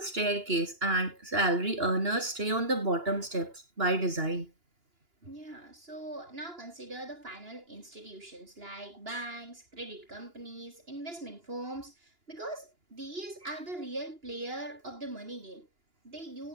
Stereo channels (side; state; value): left; late; 2.9 ms